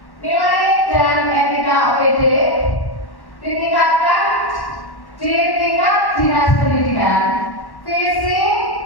Nilai dan etika OPD ditingkatkan di tingkat dinas pendidikan. Visi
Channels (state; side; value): late; right; 1.1 ms